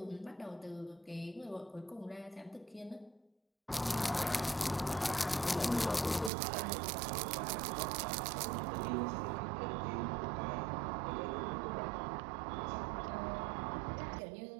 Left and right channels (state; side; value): drops out; left; at 6.3 s